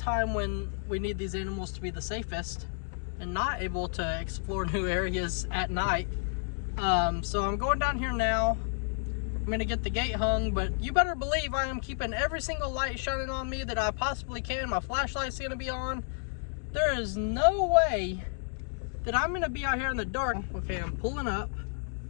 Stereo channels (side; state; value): right; silent; 57 dB below the other